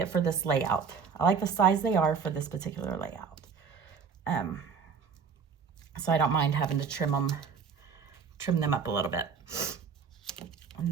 for this layout. I like the size they are for this particular layout. So I don't mind having to trim them up a little bit. And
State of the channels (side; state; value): left; quieter; 6.0 dB